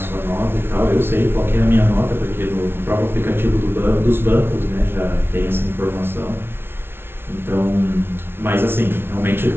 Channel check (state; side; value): late; left; 0.11 ms